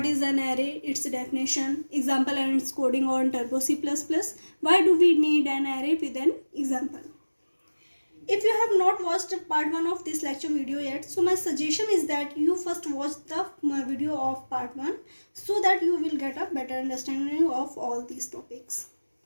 is an array, its definition, example and its coding on Turbo C++. Why do we need an array with an example? If you have not watched part 1 of this lecture video yet, so my suggestion is that you first watch the video of part 1 so that you will get a better understanding of all these topics.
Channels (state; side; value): inverted; both; correlation -1.00